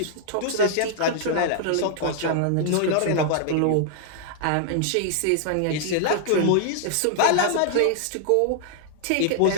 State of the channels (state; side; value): different; both; correlation -0.01